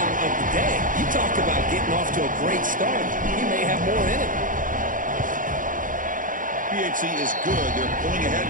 of the day. You talk about getting off to a great start. He may have more in it. PHC is good. They're pulling ahead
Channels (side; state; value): left; late; 0.39 ms